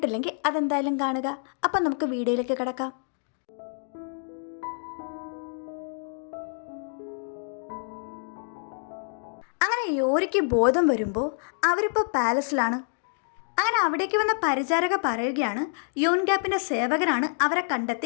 അതെന്തായാലും കാണുക. അപ്പം നമുക്ക് വീഡിയോയിലേക്ക് കിടക്കാം. അങ്ങനെ യോരിക്ക് ബോധം വരുമ്പോൾ അവരിപ്പോൾ പാലസിലാണ്. അങ്ങനെ അവിടേക്ക് വന്ന പരിചാരക പറയുകയാണ് യൂൻഗ്യാപ്പിൻ്റെ സേവകനാണ് അവരെ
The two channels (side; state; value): right; silent; digital silence